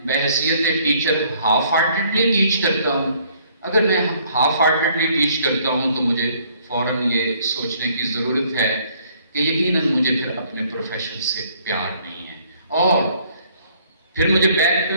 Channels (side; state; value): both; inverted; correlation -0.63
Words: بحیثیت ٹیچر ہاف ہارٹیڈلی ٹیچ کرتا ہوں؟ اگر میں ہاف ہارٹیڈلی ٹیچ کرتا ہوں تو مجھے فوراً یہ سوچنے کی ضرورت ہے کہ یقیناً مجھے پھر اپنے پروفیشن سے پیار نہیں ہے. اور پھر مجھے بیک پہ